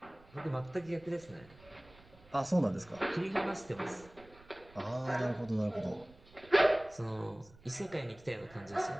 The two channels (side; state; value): right; noise; rumble, 24 dB below the sound